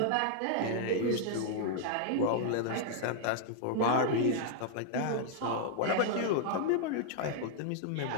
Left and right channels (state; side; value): different; both; correlation -0.01